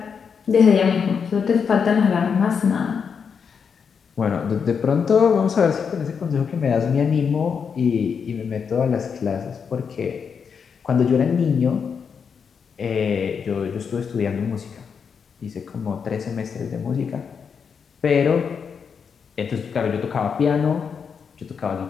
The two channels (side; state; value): right; quieter; 6.4 dB